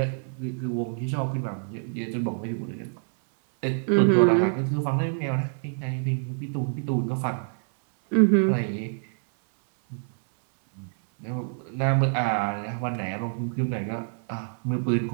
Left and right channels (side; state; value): left; silent; 61 dB below the other